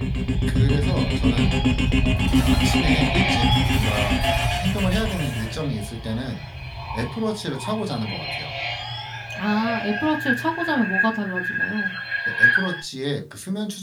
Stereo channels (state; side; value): identical; both; correlation 1.00